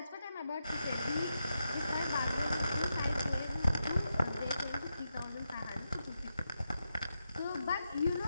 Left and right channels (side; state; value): both; inverted; correlation -0.86